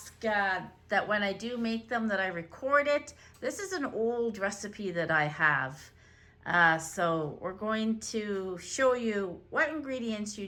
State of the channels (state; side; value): identical; both; correlation 1.00